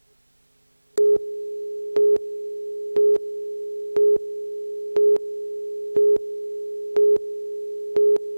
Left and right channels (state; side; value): inverted; both; correlation -1.00